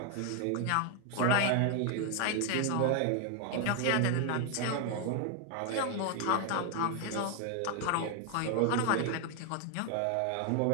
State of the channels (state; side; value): different; both; correlation 0.00